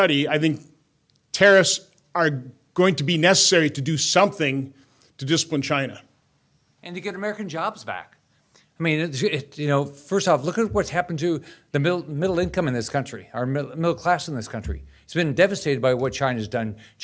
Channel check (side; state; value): both; identical; correlation 1.00